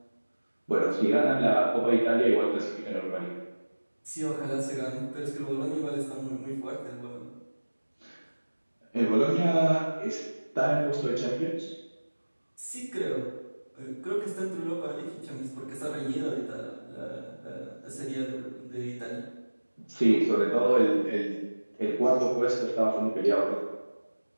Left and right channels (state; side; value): inverted; both; correlation -1.00